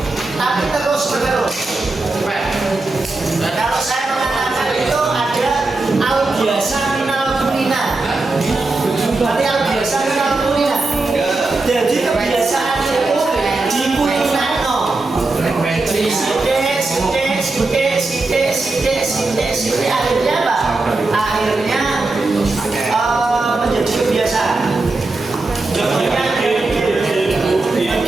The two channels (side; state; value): left; quieter; 3.3 dB